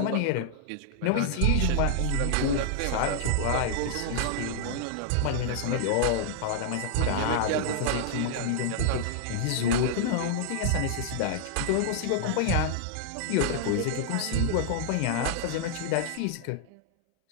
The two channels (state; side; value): different; both; correlation -0.01